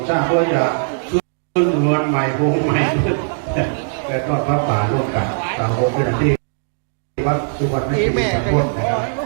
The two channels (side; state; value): left; silent; digital silence